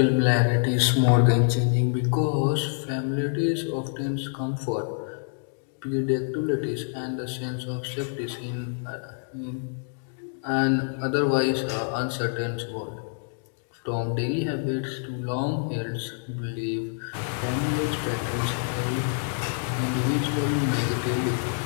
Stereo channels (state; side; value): silent; right; digital silence